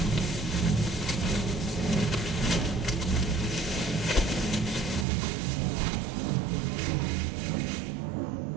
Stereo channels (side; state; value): left; drops out; at 5.1 s